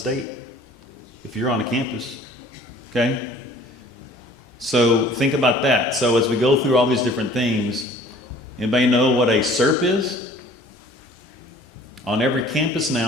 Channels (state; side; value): normal; both; correlation 0.51